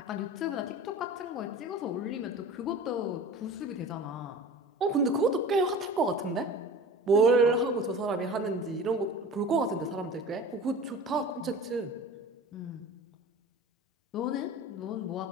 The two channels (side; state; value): both; normal; correlation 0.38